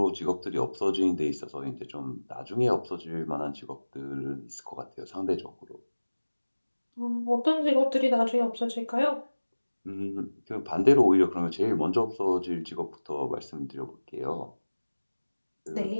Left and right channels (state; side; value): inverted; both; correlation -1.00